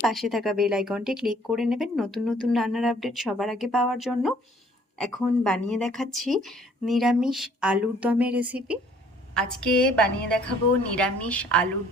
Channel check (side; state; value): both; normal; correlation 0.58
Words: পাশে থাকা বেল আইকনটি ক্লিক করে নেবেন নতুন নতুন রান্নার আপডেট সবার আগে পাওয়ার জন্য। এখন বানিয়ে দেখাচ্ছি নিরামিষ আলুর দমের রেসিপি। আজকে বানিয়ে দেখাবো নিরামিষ আলুর